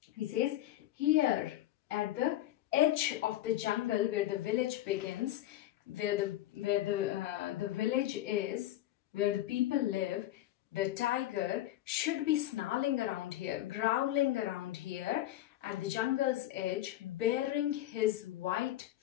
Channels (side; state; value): right; quieter; 14.0 dB